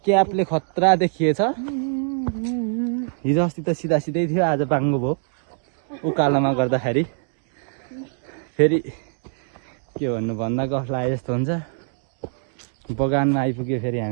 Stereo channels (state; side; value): silent; left; digital silence